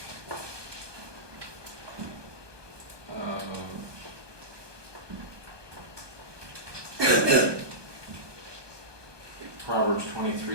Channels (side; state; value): left; late; 1.2 ms